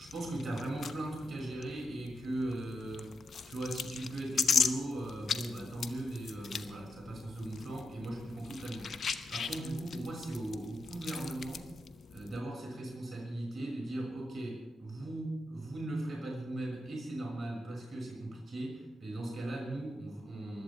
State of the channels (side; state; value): both; normal; correlation 0.85